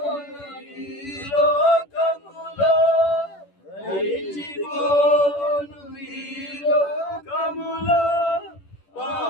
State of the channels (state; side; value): late; right; 10 ms